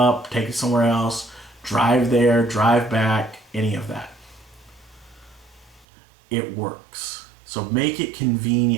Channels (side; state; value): left; drops out; at 5.9 s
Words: take it somewhere else, drive there, drive back, any of that. It works. So make it